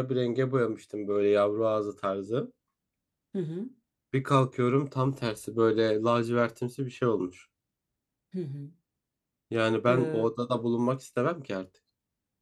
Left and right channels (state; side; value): identical; both; correlation 1.00